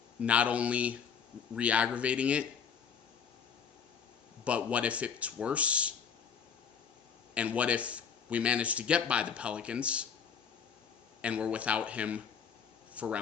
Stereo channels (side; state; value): right; quieter; 7.0 dB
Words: not only re-aggravating it, but what if it's worse? And what if we manage to get by the Pelicans and we're without him for